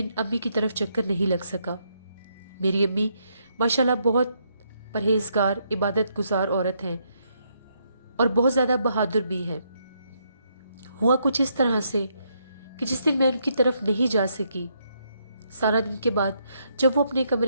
अम्मी की तरफ चक्कर नहीं लग सका। मेरी अम्मी माशाल्लाह बहुत परहेजगार इबादत गुजार औरत हैं और बहुत ज़्यादा बहादुर भी हैं। हुआ कुछ इस तरह से कि जिस दिन मैं उनकी तरफ नहीं जा सकी, सारा दिन के बाद जब वो अपने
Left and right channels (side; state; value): both; inverted; correlation -0.75